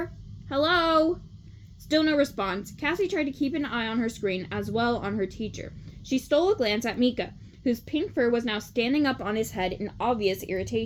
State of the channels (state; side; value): identical; both; correlation 1.00